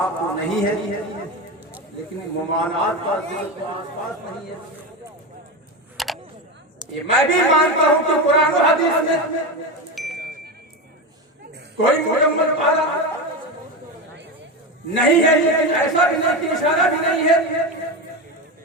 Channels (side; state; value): both; normal; correlation 0.18